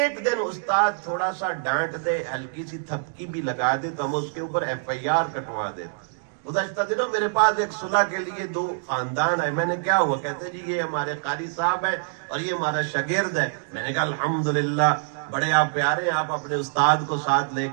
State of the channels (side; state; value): left; silent; digital silence